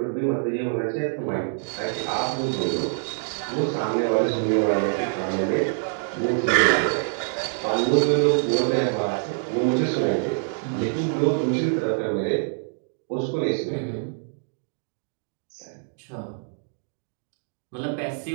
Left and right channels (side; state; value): left; silent; digital silence